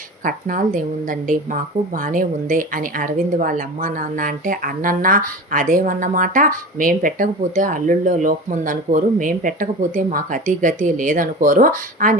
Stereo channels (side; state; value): both; normal; correlation 0.32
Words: కట్నాలదేముందండి మాకు బానే ఉంది అని అరవింద్ వాళ్ళ అమ్మా నాన్న అంటే అన్నన్నా అదేమన్నమాట, మేం పెట్టకపోతే అల్లుల్లో లోపం ఉందనుకోరు, మేం పెట్టకపోతే మాకు అతి గతి లేదనుకోరు